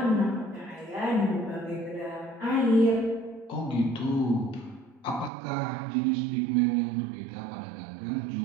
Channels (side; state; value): left; drops out; at 5.3 s